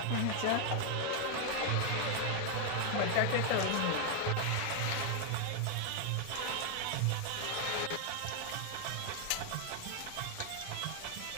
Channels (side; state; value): both; different; correlation 0.00